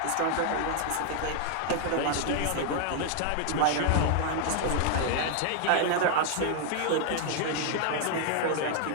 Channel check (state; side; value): different; both; correlation 0.00